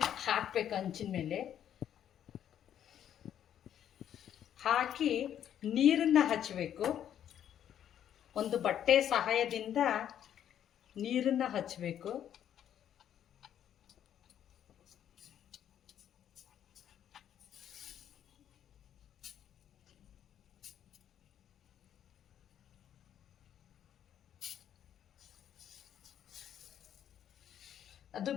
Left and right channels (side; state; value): right; quieter; 10.1 dB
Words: ಹಾಕ್ಬೇಕು. ಹಂಚಿನ ಮೇಲೆ ಹಾಕಿ ನೀರನ್ನು ಹಚ್ಚಬೇಕು. ಒಂದು ಬಟ್ಟೆ ಸಹಾಯದಿಂದ ನೀರನ್ನು ಹಚ್ಚಬೇಕು. ಅದು